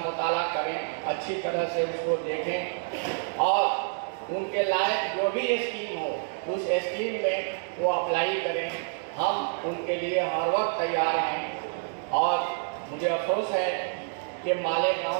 करें, अच्छी तरह से उसको देखें और उनके लायक जो भी स्कीम हो उस स्कीम में वो अप्लाई करें। हम उनके लिए हर वक्त तैयार हैं। और मुझे अफसोस है कि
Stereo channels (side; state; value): left; silent; 59 dB below the other